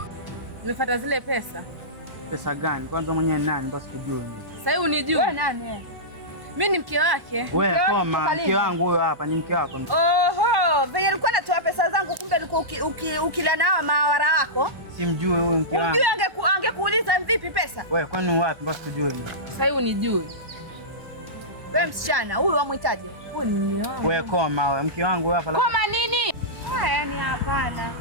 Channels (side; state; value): left; late; 1.1 ms